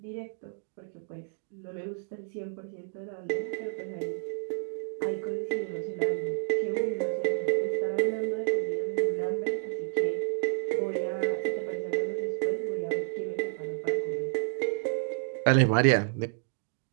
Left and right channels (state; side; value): silent; left; digital silence